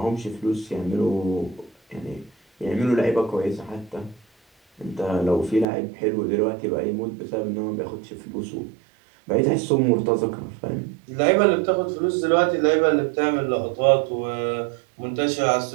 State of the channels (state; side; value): drops out; left; at 5.7 s